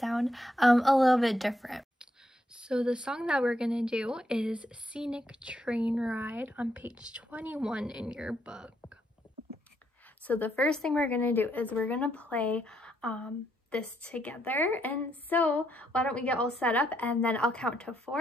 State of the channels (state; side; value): normal; both; correlation 0.76